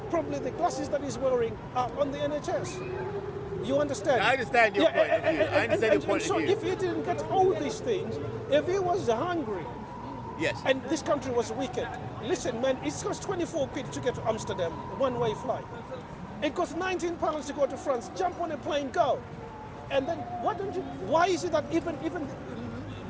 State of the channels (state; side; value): identical; both; correlation 1.00